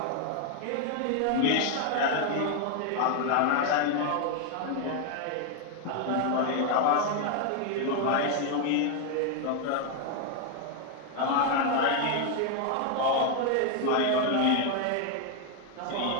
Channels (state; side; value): different; both; correlation 0.00